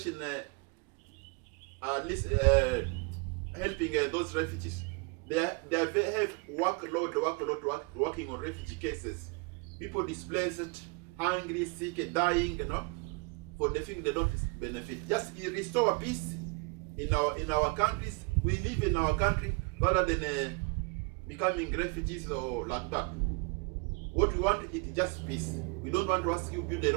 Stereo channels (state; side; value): quieter; left; 30.3 dB